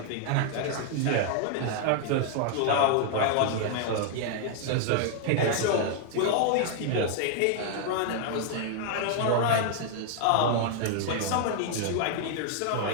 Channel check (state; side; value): different; both; correlation 0.00